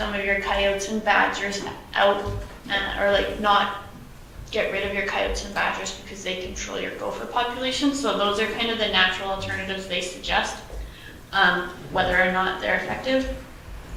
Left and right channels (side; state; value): both; identical; correlation 1.00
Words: of your coyotes and badgers out, or like not get rid of your coyotes and badgers because they control your gopher population. So those are kind of the natural alternatives they suggest. Whether or not they're effective,